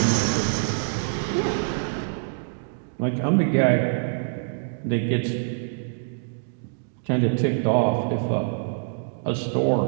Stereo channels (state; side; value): silent; left; digital silence